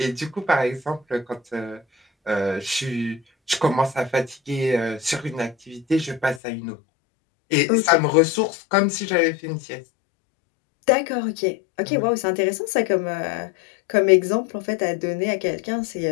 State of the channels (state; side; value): drops out; right; at 6.4 s